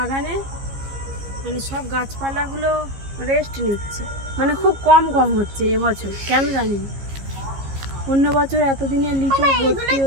মানে সব গাছপালাগুলো রেস্ট নিচ্ছে, মানে খুব কম হচ্ছে এবছর, কেন জানি না। অন্য বছর এতদিনে লিচু ভর্তি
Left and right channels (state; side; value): late; left; 15 ms